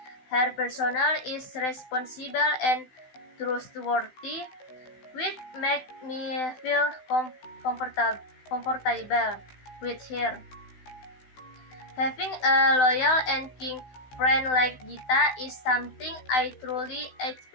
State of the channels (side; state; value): right; late; 16 ms